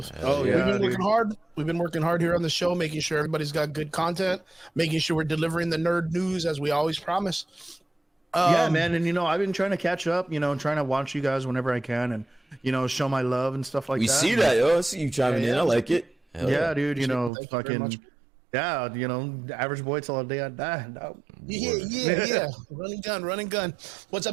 Yeah, we've been working hard. We've been working hard here on the show, making sure everybody's got good content, making sure we're delivering the nerd news as we always promise. Yeah, man. And I've been trying to catch up. Trying to watch you guys whenever I can, and show my love and stuff like that. We see that, yo. I see you chiming in. I like it. Hell yeah, dude. Fucking. Yeah, average boy till the day I die. No. Yeah. Running gun. What's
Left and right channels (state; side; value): drops out; left; at 17.3 s